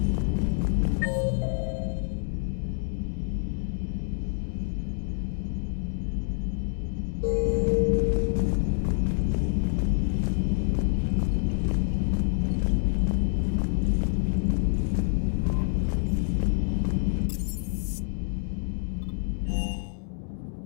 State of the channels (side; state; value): right; silent; digital silence